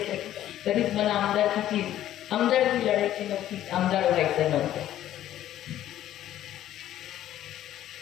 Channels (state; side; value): quieter; right; 12.5 dB